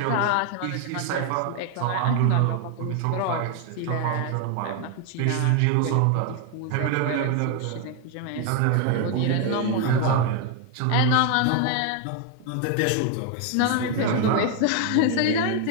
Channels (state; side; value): different; both; correlation 0.01